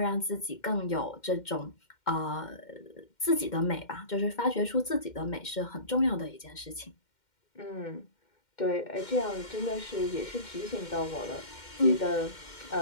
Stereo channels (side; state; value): right; late; 2.1 ms